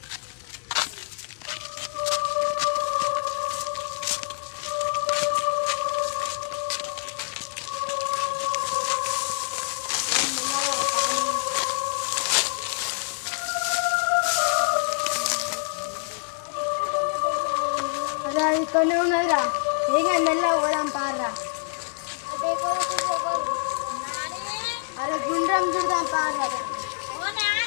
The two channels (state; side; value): silent; right; 61 dB below the other